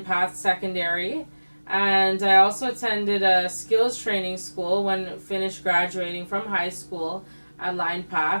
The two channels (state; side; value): inverted; both; correlation -1.00